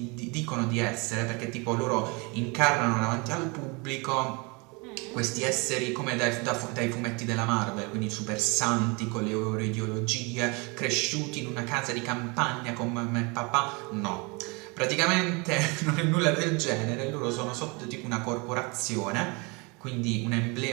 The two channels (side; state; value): left; quieter; 29.1 dB